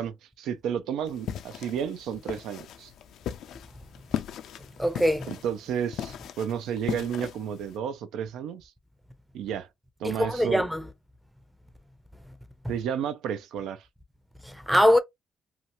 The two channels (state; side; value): normal; both; correlation 0.80